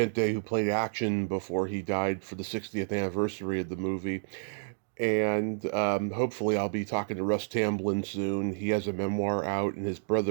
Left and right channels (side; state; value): left; silent; digital silence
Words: who played Action before he died for the 60th anniversary of the movie. And hopefully I'll be talking to Russ Tamblyn soon. He has a memoir out, and his